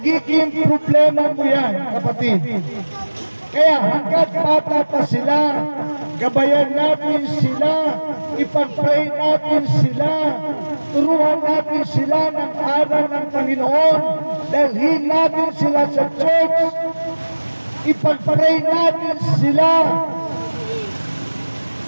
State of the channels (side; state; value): both; inverted; correlation -1.00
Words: problema mo yan, kapatid. Kaya hanggat bata pa sila, gabayan natin sila, ipag-pray natin sila, turuan natin sila ng aral ng Panginoon, dalhin natin sila sa church, ipag-pray natin sila.